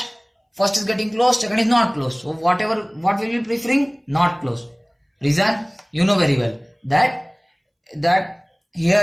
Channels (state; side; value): identical; both; correlation 1.00